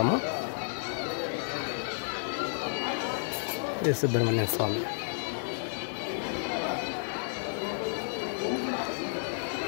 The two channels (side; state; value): right; silent; digital silence